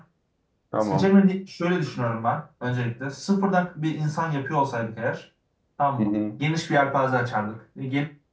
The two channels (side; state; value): both; identical; correlation 1.00